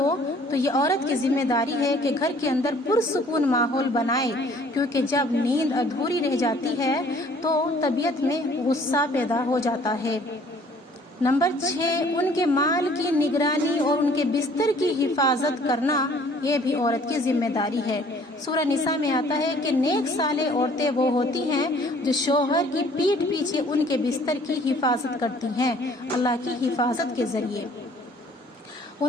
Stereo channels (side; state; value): both; normal; correlation 0.56